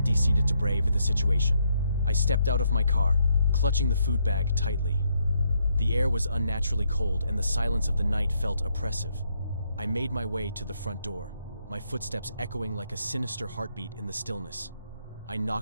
decided to brave the situation. I stepped out of my car, clutching the food bag tightly. The air was unnaturally cold, and the silence of the night felt oppressive. I made my way to the front door, my footsteps echoing like a sinister heartbeat in the stillness. I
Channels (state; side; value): inverted; both; correlation -0.75